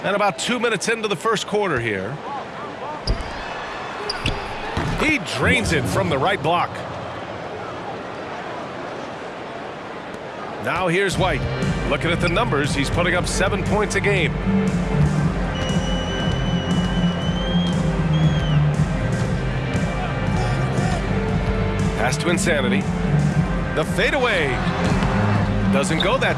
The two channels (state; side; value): identical; both; correlation 1.00